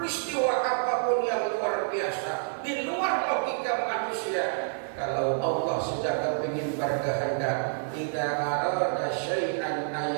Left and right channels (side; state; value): left; silent; 56 dB below the other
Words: apapun yang luar biasa di luar logika manusia. Kalau Allah sudah kepingin berkehendak, tidak arada syai'an